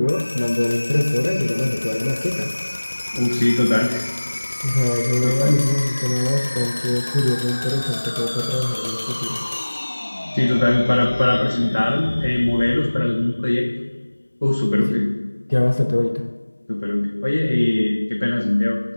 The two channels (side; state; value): both; inverted; correlation -1.00